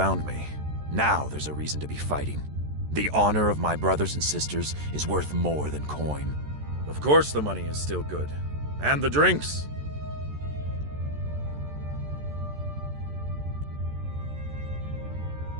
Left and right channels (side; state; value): left; late; 14 ms